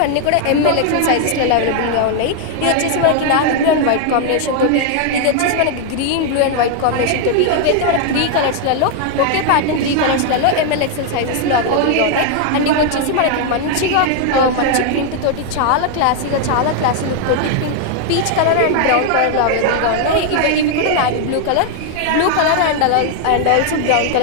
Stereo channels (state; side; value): different; both; correlation 0.00